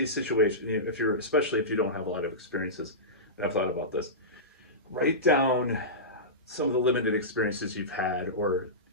situations. You know, especially if you don't have a lot of experiences, and I've thought about this, write down some of the limited experiences you've had, or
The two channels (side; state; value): both; normal; correlation -0.18